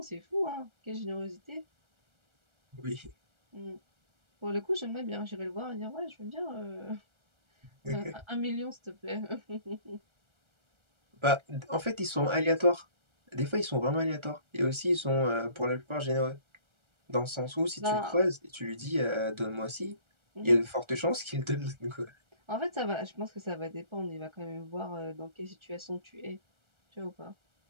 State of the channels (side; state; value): left; late; 1.3 ms